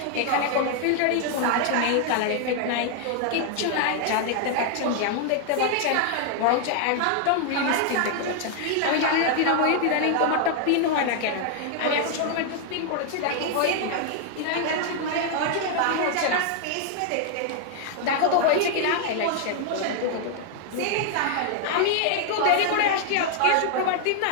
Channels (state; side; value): different; both; correlation 0.00